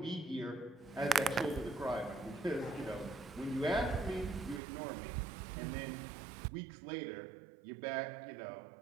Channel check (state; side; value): drops out; left; at 4.6 s